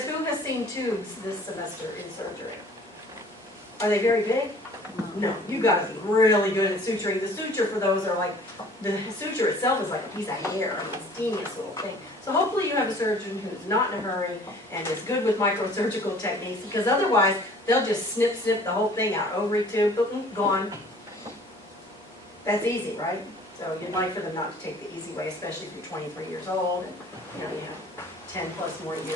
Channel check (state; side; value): normal; both; correlation 0.51